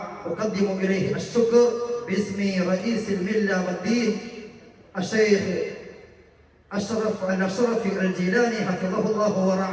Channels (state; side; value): identical; both; correlation 1.00